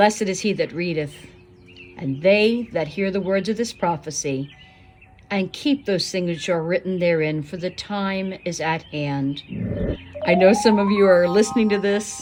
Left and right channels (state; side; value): identical; both; correlation 1.00